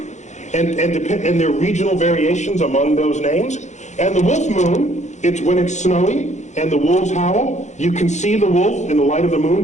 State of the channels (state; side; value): late; right; 0.34 ms